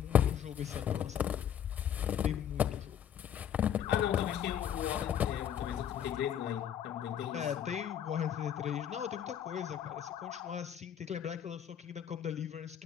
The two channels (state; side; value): quieter; right; 9.4 dB